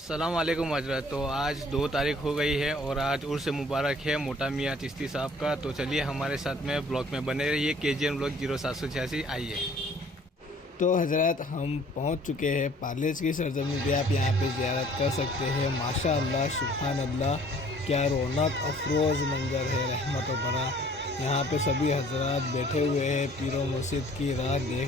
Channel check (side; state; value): both; normal; correlation 0.55